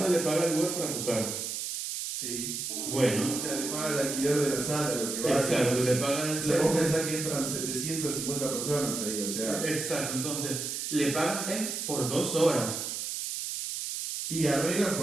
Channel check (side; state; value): right; noise; hiss, 4 dB below the sound